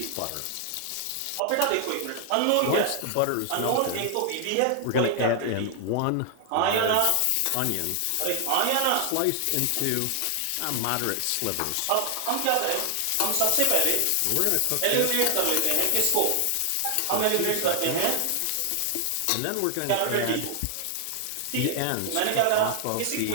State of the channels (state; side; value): different; both; correlation 0.00